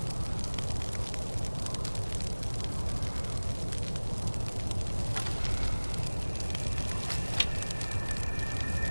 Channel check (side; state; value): both; inverted; correlation -1.00